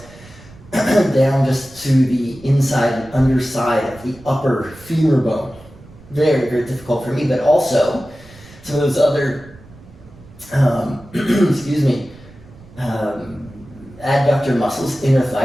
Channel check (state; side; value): noise; right; rumble, 22 dB below the sound